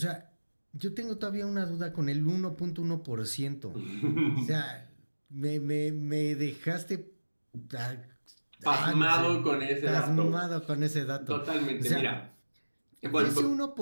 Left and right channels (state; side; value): inverted; both; correlation -1.00